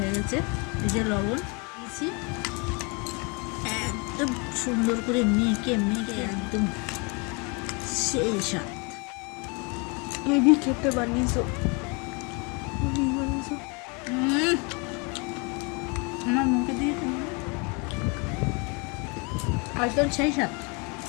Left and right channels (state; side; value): quieter; right; 31.4 dB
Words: গেছে, এই যে লবণ দিয়েছি, একদম সুন্দর করে মেখে মেখে একদম সেই স্বাদ। হেভি খেতে বানিয়েছো। আমার মুখে দিয়ে একদম সেই স্বাদ।